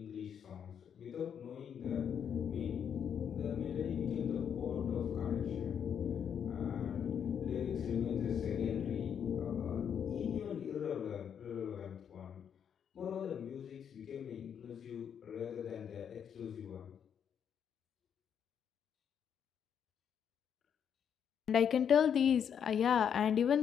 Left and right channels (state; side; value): quieter; right; 8.1 dB